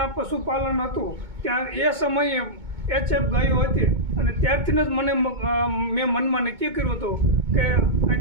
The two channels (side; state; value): left; late; 2.2 ms